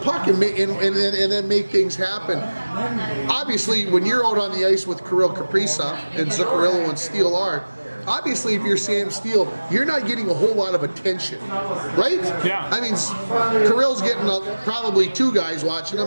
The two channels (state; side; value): inverted; both; correlation -1.00